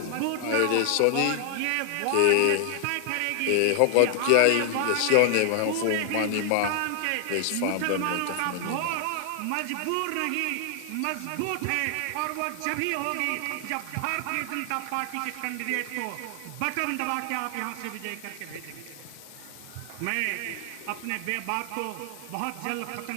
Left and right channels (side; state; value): both; different; correlation 0.00